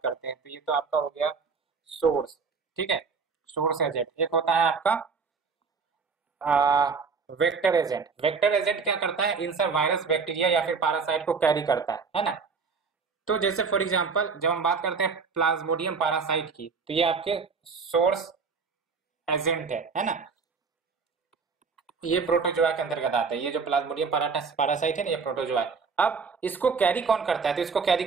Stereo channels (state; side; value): quieter; left; 5.1 dB